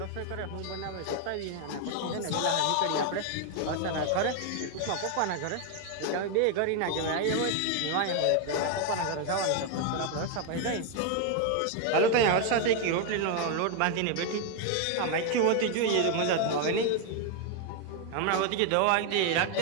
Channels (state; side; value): different; both; correlation 0.01